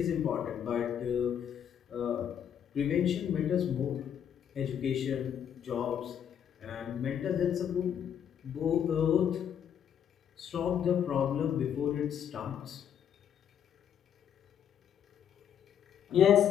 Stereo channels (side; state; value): right; quieter; 8.9 dB